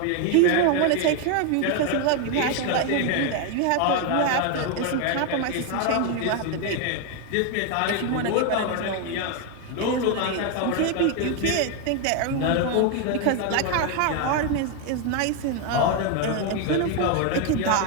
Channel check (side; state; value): both; different; correlation 0.01